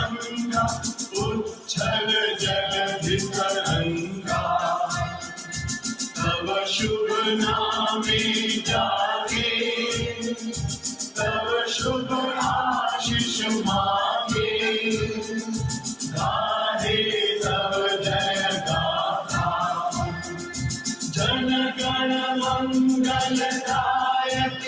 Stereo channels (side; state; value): both; identical; correlation 1.00